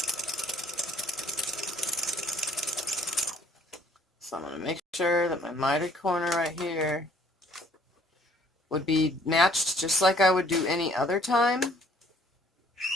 So I'm going to make sure that my mitered corner right here would be matched just like I would do any other time.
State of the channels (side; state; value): both; normal; correlation 0.60